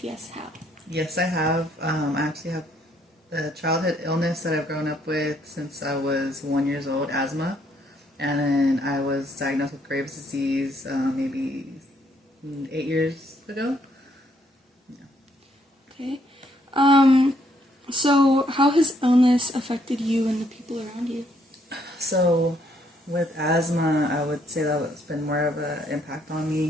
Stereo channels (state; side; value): normal; both; correlation 0.70